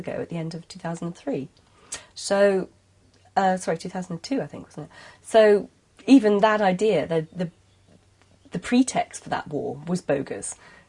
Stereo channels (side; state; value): both; identical; correlation 1.00